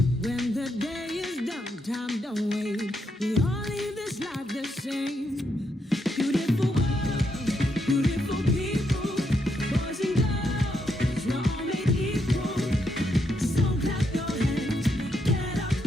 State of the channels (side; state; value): both; normal; correlation 0.79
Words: When the day is done, time don't wait. We all live this life the same. Beautiful world, beautiful people, boys and girls, we're all made equal. So clap your hands, get up